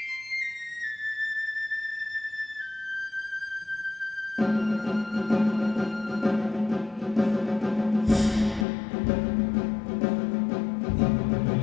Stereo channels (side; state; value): right; drops out; at 8.7 s